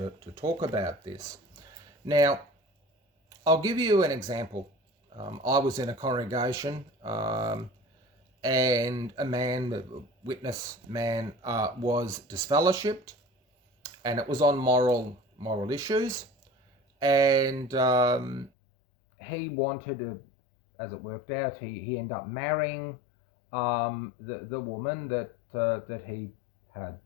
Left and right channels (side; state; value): right; drops out; at 18.5 s